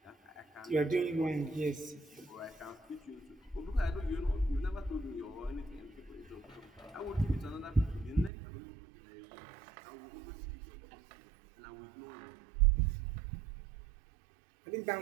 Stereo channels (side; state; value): left; drops out; at 8.3 s